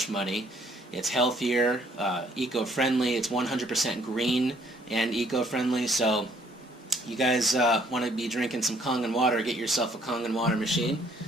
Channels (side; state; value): both; normal; correlation 0.63